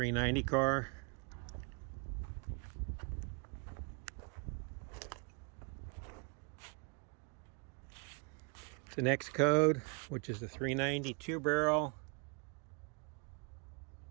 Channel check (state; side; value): quieter; left; 34.2 dB